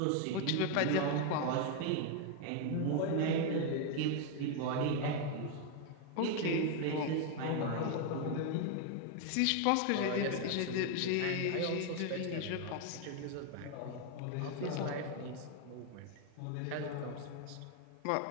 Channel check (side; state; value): both; different; correlation 0.01